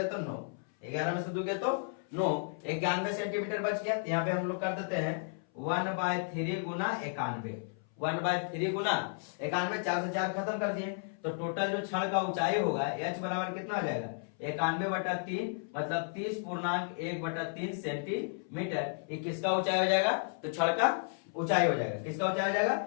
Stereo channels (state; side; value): silent; right; 56 dB below the other